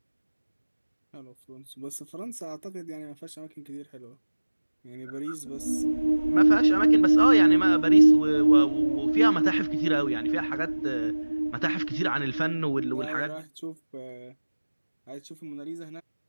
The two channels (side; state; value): both; inverted; correlation -1.00